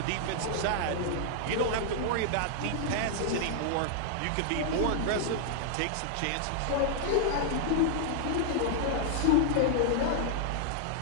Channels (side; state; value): both; different; correlation -0.01